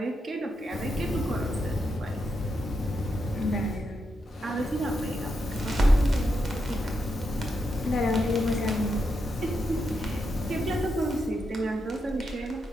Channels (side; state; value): both; normal; correlation 0.84